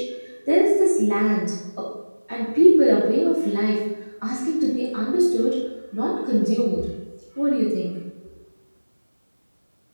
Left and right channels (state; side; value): inverted; both; correlation -1.00